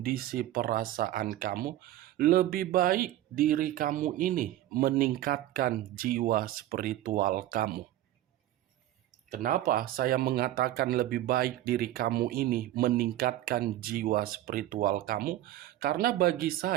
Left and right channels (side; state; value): left; quieter; 14.0 dB